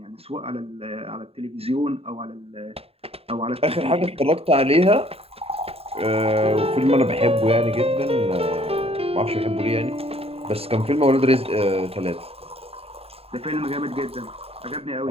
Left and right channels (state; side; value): late; left; 0.28 ms